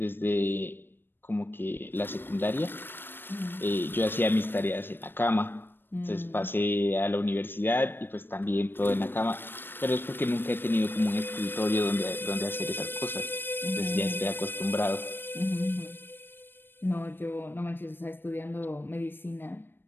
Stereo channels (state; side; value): late; right; 0.097 ms